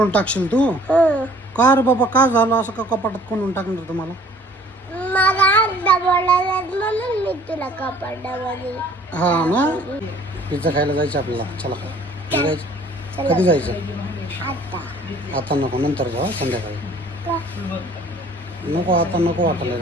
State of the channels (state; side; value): normal; both; correlation 0.54